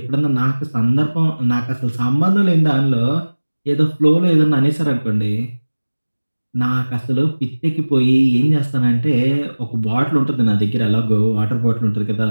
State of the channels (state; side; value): inverted; both; correlation -1.00